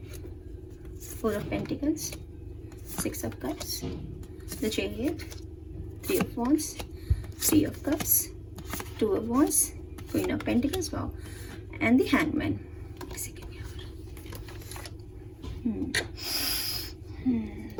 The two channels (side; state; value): both; identical; correlation 1.00